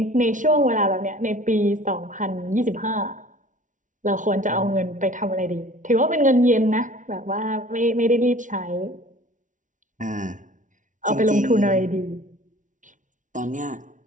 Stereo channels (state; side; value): late; left; 0.37 ms